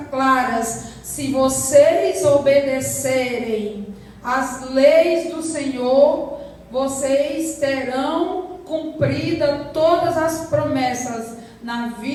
claras. Se vocês obedecerem às leis do Senhor, vocês terão cumprida todas as promessas na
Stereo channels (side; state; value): both; identical; correlation 1.00